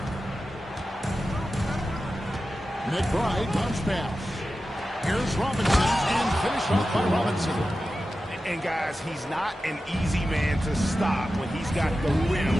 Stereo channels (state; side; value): normal; both; correlation 0.93